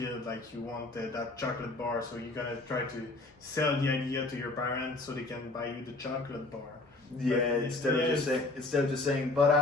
like you want that chocolate bar, so you're gonna try to sell the idea to your parents so they can buy you the chocolate bar. Yeah, But instead of just saying, but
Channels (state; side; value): quieter; right; 3.0 dB